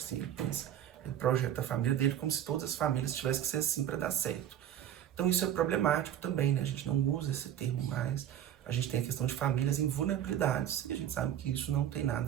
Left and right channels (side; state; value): left; quieter; 10.7 dB